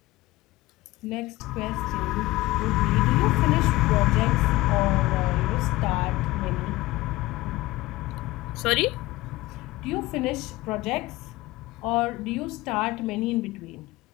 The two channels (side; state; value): right; quieter; 19.2 dB